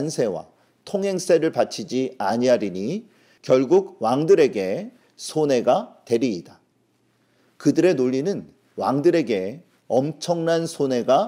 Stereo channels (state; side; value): identical; both; correlation 1.00